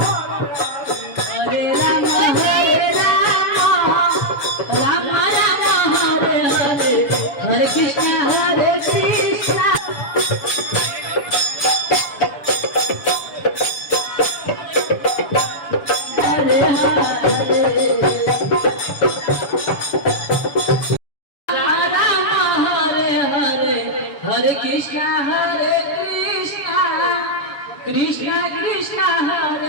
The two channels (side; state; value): right; late; 7.0 ms